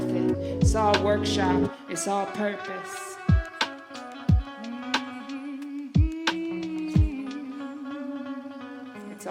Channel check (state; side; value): identical; both; correlation 1.00